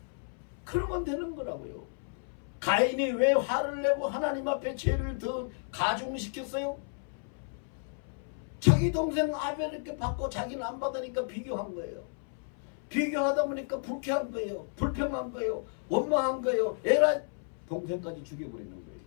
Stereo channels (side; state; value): right; silent; 56 dB below the other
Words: 그러면 되는 거라고요. 가인이 왜 화를 내고 하나님 앞에 죄를 더 가중시켰어요? 자기 동생 아벨 이렇게 받고 자기는 안 받으니까 비교한 거예요. 비교하다 보니까 불쾌한 거예요. 불평한 거예요. 원망한 거예요. 에라, 동생까지 죽여버리는 거예요.